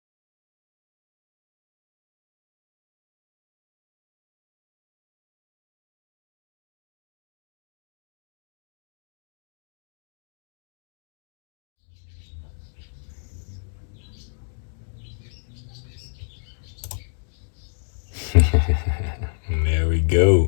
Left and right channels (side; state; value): right; silent; digital silence